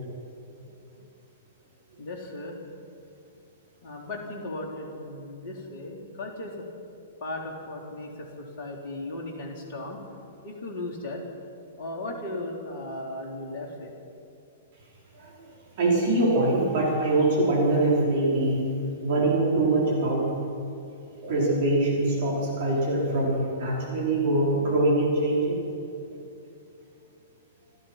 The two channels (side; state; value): both; inverted; correlation -0.38